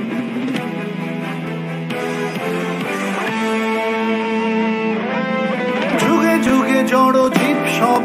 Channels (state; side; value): identical; both; correlation 1.00